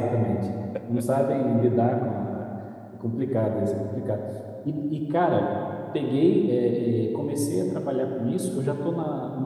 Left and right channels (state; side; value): identical; both; correlation 1.00